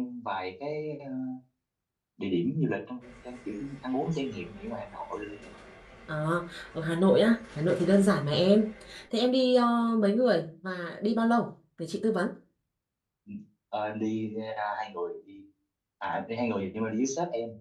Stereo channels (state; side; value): identical; both; correlation 1.00